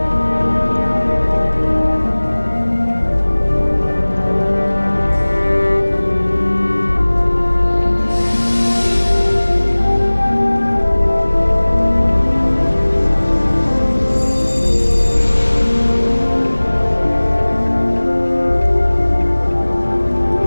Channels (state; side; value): inverted; both; correlation -1.00